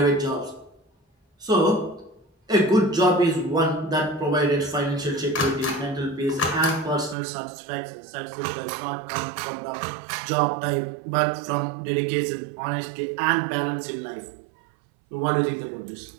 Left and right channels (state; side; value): drops out; left; at 7.2 s